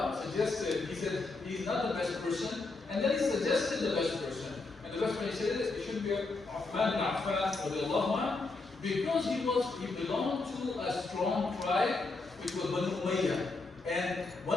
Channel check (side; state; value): right; quieter; 3.6 dB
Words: suggested, he said he's not the best person, and then he suggested the best person. And the best person, he said it should be Uthman bin Affan, because he belonged to a strong tribe, which was Banu Umayyah. And